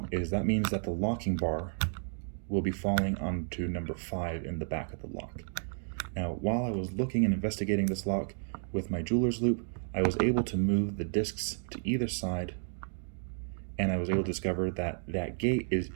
is that means that the locking bar will be falling onto number 5 in the back of the lock. Now, while I was looking and investigating this lock with my jeweler's loop, I was able to move the discs to either side, and I was able to discover that that gate is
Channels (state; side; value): silent; left; digital silence